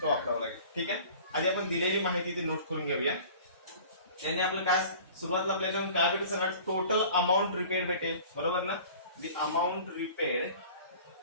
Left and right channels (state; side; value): inverted; both; correlation -0.45